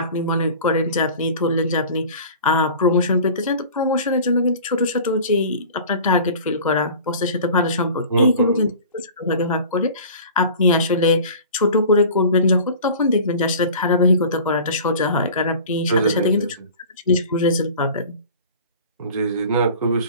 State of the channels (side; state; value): both; inverted; correlation -0.41